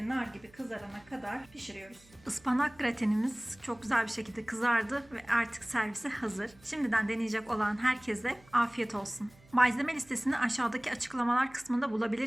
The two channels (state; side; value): noise; right; hum, 26 dB below the sound